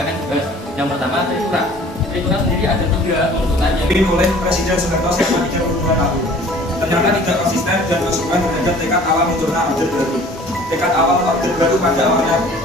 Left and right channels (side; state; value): both; normal; correlation 0.50